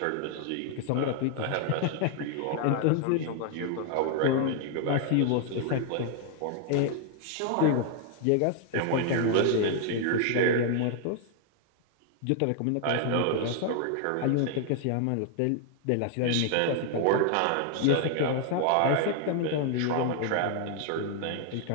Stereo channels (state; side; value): different; both; correlation 0.00